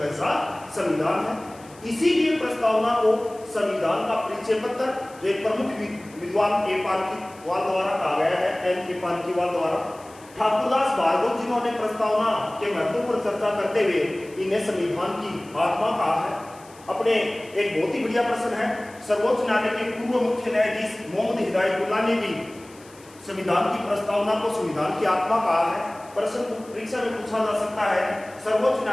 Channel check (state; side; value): noise; left; hiss, 24 dB below the sound